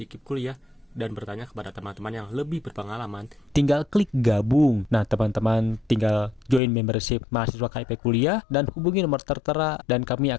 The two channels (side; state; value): right; drops out; at 6.6 s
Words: KIP kuliah dan bertanya kepada teman-teman yang lebih berpengalaman, tinggal klik gabung. Nah, teman-teman tinggal join membership mahasiswa KIP kuliah dan hubungi nomor tertera dan kami